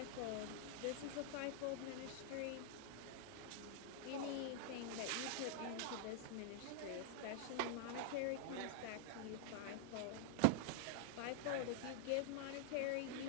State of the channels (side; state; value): both; different; correlation -0.01